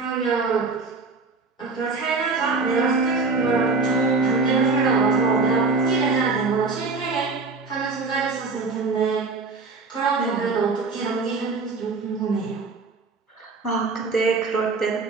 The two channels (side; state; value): left; quieter; 4.1 dB